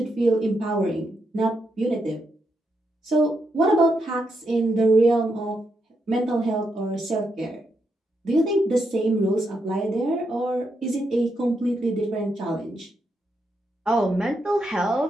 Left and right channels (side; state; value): both; normal; correlation 0.81